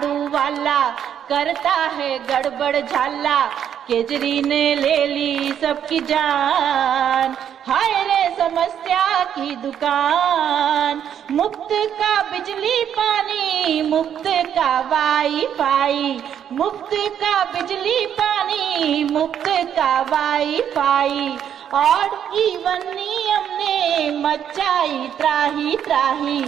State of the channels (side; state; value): left; quieter; 9.2 dB